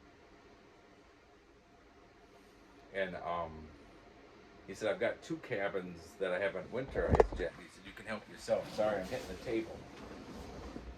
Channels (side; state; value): both; identical; correlation 1.00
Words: And he said, I've got two cabins that I haven't winterized yet. He said, you can help yourself. Sorry, I'm hitting the table.